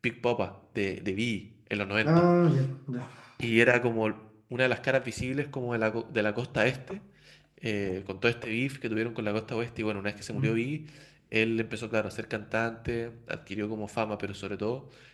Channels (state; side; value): identical; both; correlation 1.00